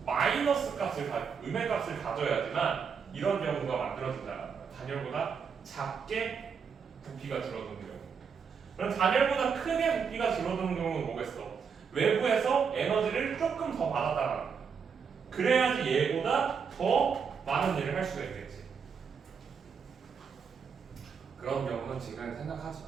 마이너스 값을 음의 값을 가져야지만 이런 경우가 만들어진다. 단열보다 작게 부피가 줄어드는 경우. 그럼 단열보다 크게 부피가 줄어드는 경우는 뭐겠어? 외부에서 에너지를 조금 더 받았다는 거야. 그래야지 얘보다 더 많은 일을 할 수가 있겠지. 그런 경우는 지금 생각하지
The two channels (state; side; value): quieter; left; 6.3 dB